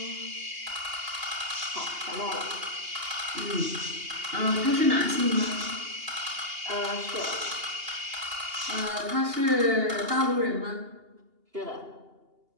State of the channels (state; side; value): late; left; 2.8 ms